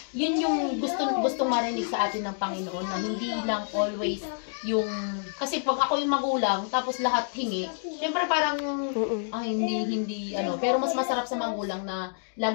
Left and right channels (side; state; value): right; silent; digital silence